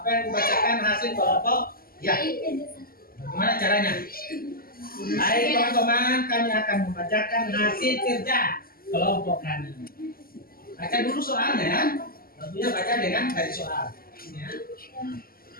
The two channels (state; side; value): late; right; 0.42 ms